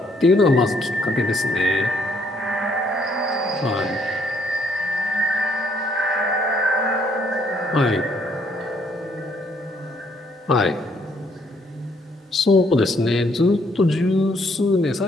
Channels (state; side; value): normal; both; correlation 0.68